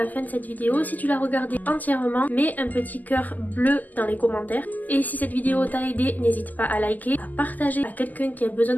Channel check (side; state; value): right; late; 0.082 ms